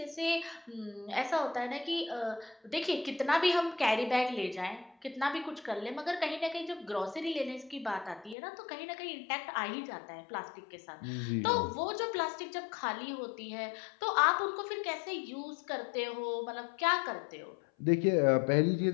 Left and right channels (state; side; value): drops out; right; at 8.3 s